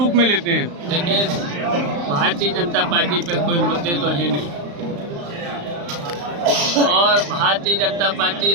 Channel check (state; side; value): late; left; 35 ms